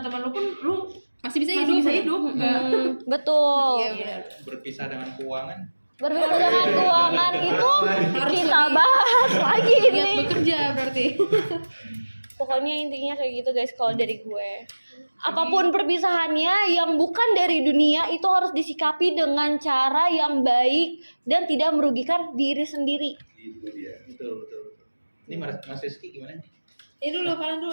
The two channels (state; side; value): inverted; both; correlation -1.00